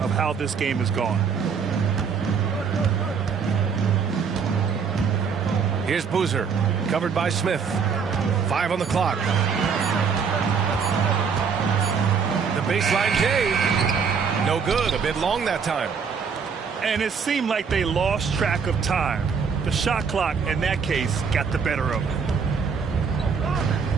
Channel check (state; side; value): quieter; left; 6.1 dB